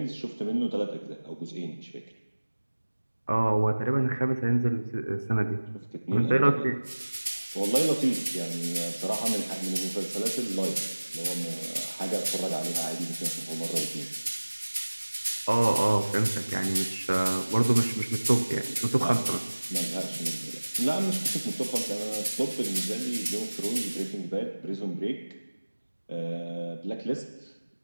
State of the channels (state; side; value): inverted; both; correlation -1.00